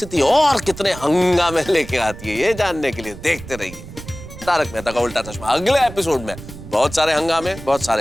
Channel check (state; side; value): noise; right; rumble, 14 dB below the sound